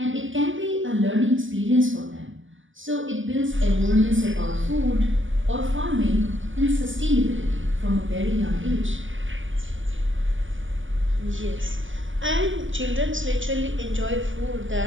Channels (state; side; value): late; left; 0.57 ms